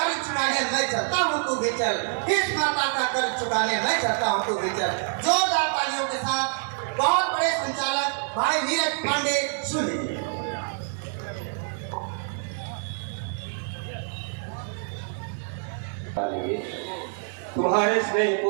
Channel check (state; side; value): silent; left; 61 dB below the other